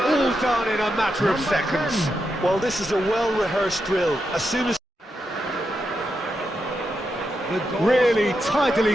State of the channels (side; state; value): both; normal; correlation 0.85